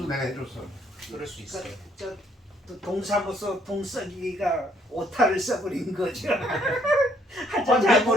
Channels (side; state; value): both; normal; correlation 0.66